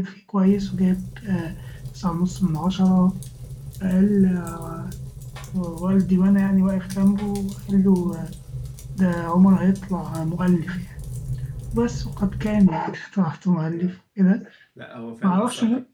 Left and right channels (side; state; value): both; identical; correlation 1.00